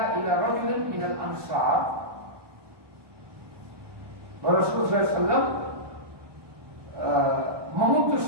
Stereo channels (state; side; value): late; left; 1.2 ms